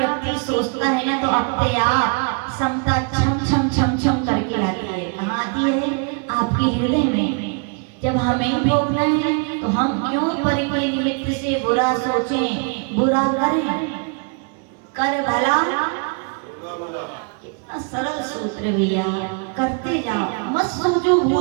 सोचता है ना, तो अपने आप समता छम छम छम छम करके लाती है। कहाँ आती है? आपके हृदय में। जब हमें भोगना है तो हम क्यों परि के निमित्त से बुरा सोचें, बुरा करें? कर भला, कितना सरल सूत्र भैया, करते जाओ, मत सोचो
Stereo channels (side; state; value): left; quieter; 37.2 dB